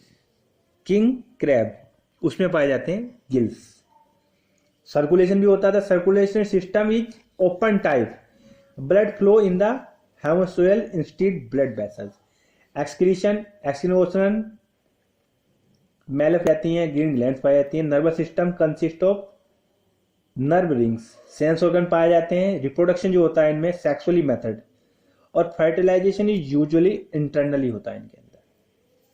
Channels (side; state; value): both; identical; correlation 1.00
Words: क्रैब उसमें पाए जाते हैं गिल्स। सर्कुलेशन भी होता था, circulation system is open type, blood flow in the haemocoel instead blood vessels. Excretion मेल जाती हैं, ग्रीन ग्लैंड्स पाई जाती हैं। Nervous system consist of nerve rings, sense organ पाए जाते हैं। रिप्रोडक्शन जो होता है इनमें सेक्सुअली मेथड, और फर्टिलाइजेशन इज यूजुअली इंटरनली होता है इनके अंदर।